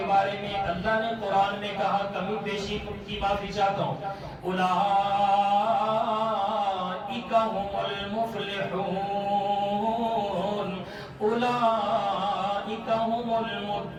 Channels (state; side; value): identical; both; correlation 1.00